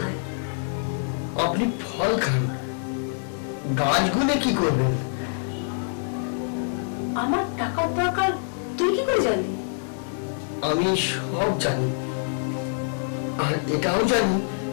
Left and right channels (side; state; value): right; silent; 57 dB below the other